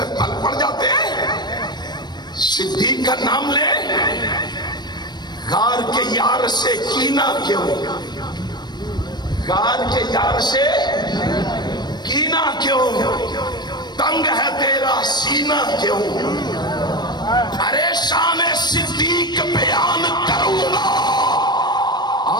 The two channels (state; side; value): late; right; 0.21 ms